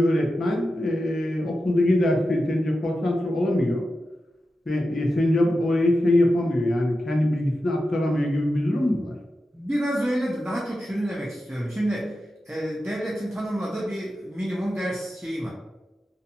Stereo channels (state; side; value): normal; both; correlation 0.91